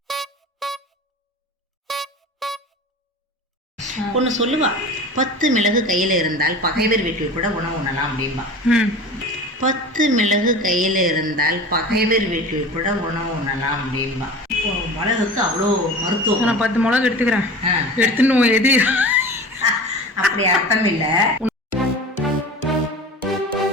ஒன்று சொல்லுவா, 10 மிளகு கையில் இருந்தால் பகைவர் வீட்டில் கூட உணவு உண்ணலாம் அப்படின்பா. 10 மிளகு கையில் இருந்தால் பகைவர் வீட்டில் கூட உணவு உண்ணலாம் அப்படின்பா. மிளகுக்கு அவ்வளோ மருத்துவம். நான் 10 மிளகு எடுத்துக்கிறேன். எடுத்துன்னு எது அப்படி அர்த்தம் இல்லை.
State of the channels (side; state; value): both; normal; correlation 0.35